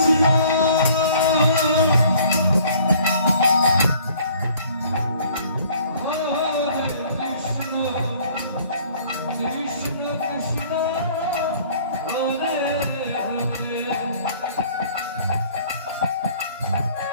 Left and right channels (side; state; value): both; inverted; correlation -0.55